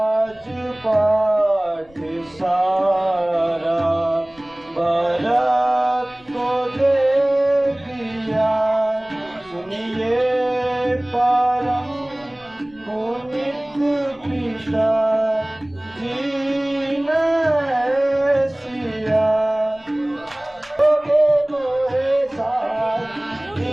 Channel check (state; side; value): noise; left; rumble, 28 dB below the sound